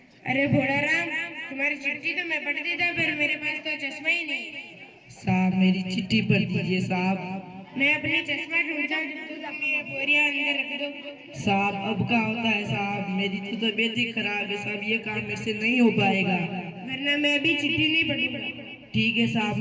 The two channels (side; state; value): both; identical; correlation 1.00